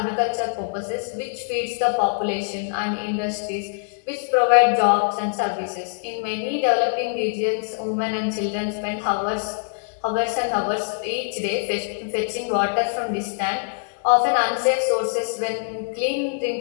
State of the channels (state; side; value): silent; right; digital silence